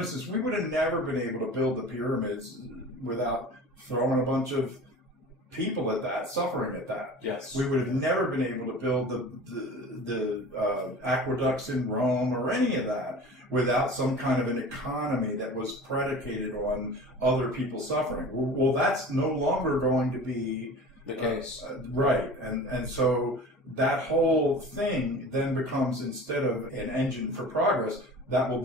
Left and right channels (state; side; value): normal; both; correlation 0.39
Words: we would have never been able to build the pyramids without throwing a bunch of people at that, suffering at that. Yes. We would have never been able to build the aqueducts in Rome or any of that without some kind of an economy that was predicated on other people suffering. Well, that's no longer going to be the case. Right. And so that whole thing then becomes, instead of an engine for progress, that will